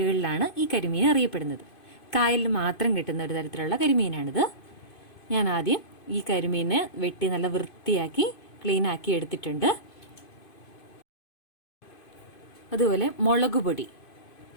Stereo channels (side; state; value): right; late; 2.5 ms